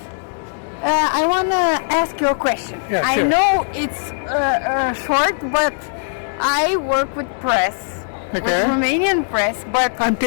I want to ask you a question. Yeah, I sure. know it's short, but I work with press, with Okay. Romanian press, but I'm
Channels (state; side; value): silent; right; digital silence